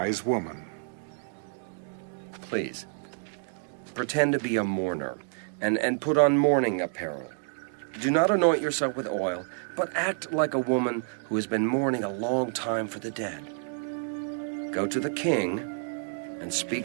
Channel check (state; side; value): silent; left; 59 dB below the other